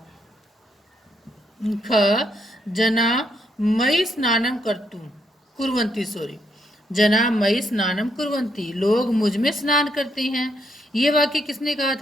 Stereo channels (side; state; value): both; normal; correlation 0.76